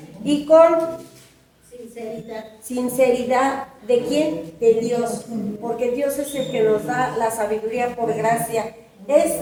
y con sinceridad. ¿De quién? De Dios, porque Dios es el que nos da la sabiduría por gracia. Es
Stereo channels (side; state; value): both; identical; correlation 1.00